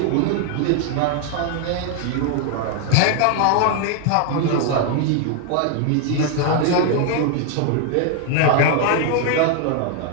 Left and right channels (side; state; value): both; different; correlation 0.00